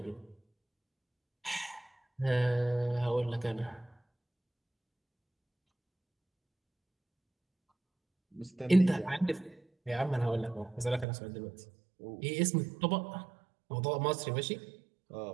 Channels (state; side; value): drops out; left; at 11.1 s